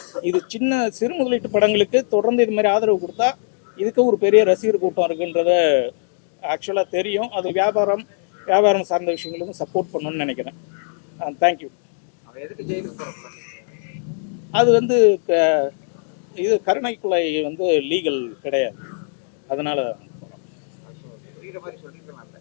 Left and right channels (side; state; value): right; silent; digital silence